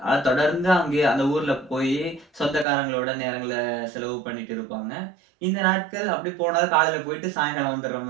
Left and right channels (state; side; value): drops out; left; at 2.7 s